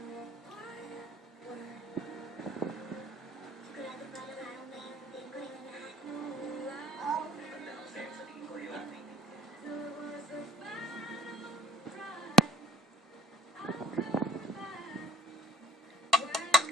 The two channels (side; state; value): both; normal; correlation 0.52